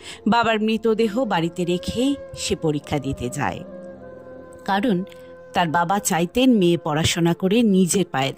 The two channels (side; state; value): both; identical; correlation 1.00